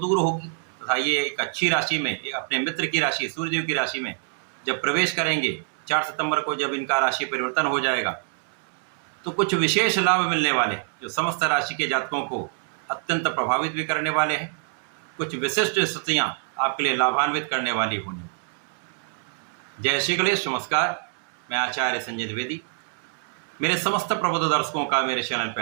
होगी तथा ये एक अच्छी राशि में, अपने मित्र की राशि सूर्यदेव की राशि में जब प्रवेश करेंगे 4 सितंबर को, जब इनका राशि परिवर्तन हो जाएगा तो कुछ विशेष लाभ मिलने वाले जो समस्त राशि के जातकों को अत्यंत प्रभावित भी करने वाले हैं। कुछ विशिष्ट स्थितियां आपके लिए लाभान्वित करने वाली होंगी। जय श्री गणेश, नमस्कार। मैं आचार्य संजय द्विवेदी। मेरे समस्त प्रबुद्ध दर्शकों का मेरे चैनल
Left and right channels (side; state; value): left; silent; 61 dB below the other